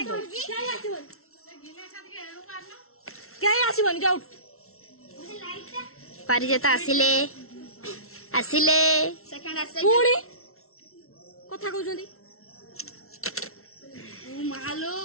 क्या आसीबन जाउ पारी जेता आसिले आसिले सेकंड आसे पुडी कथा कहउछंदी मालो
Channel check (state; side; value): late; right; 0.63 ms